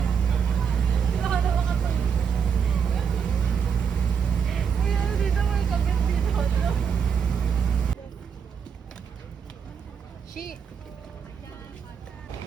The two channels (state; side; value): quieter; left; 6.8 dB